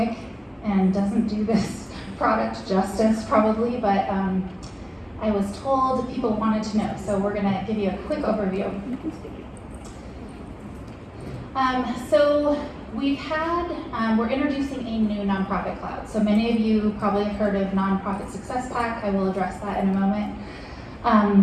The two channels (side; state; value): both; identical; correlation 1.00